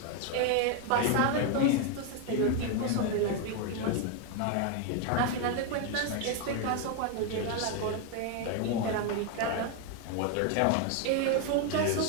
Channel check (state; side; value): different; both; correlation 0.01